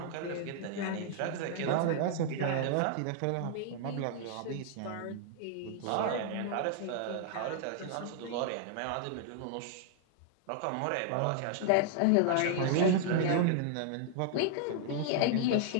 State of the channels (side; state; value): both; different; correlation 0.00